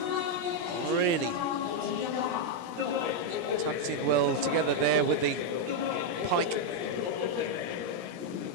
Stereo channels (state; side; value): late; left; 17 ms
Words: Really tucked in well together there with the pike.